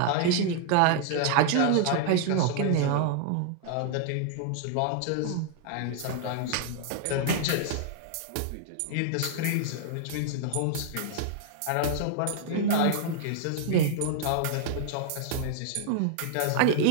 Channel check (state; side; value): different; both; correlation -0.01